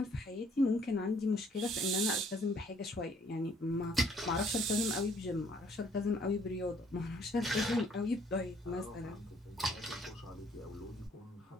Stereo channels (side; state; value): both; normal; correlation 0.63